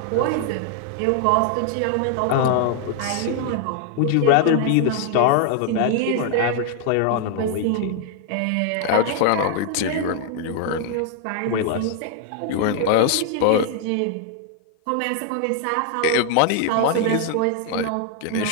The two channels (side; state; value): both; different; correlation 0.00